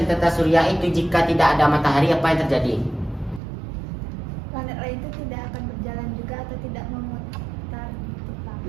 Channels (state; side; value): drops out; left; at 3.4 s